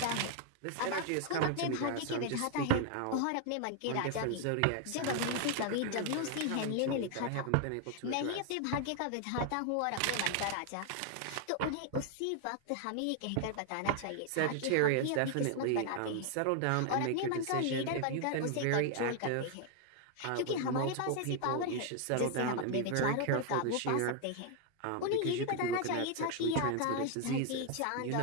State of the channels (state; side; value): different; both; correlation 0.00